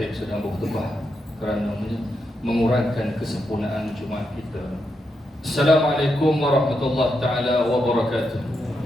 sedang berkhutbah kerana mengurangkan kesempurnaan Jumaat kita. Assalamualaikum warahmatullahi taala wabarakatuh.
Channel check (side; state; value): both; normal; correlation 0.84